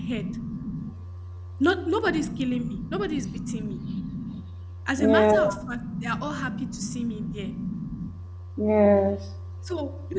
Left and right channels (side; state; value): both; identical; correlation 1.00